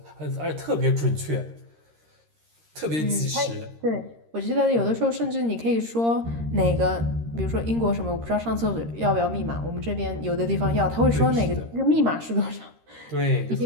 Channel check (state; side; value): late; left; 13 ms